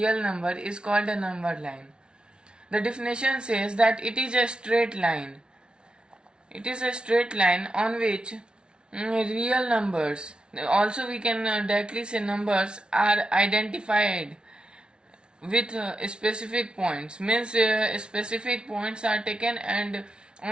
number is called a number line. The definition says that it is a straight line. It is a straight line on which real numbers, also we can directly say numbers, are identified with specific points. Means specific points are taken and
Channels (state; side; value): late; left; 0.056 ms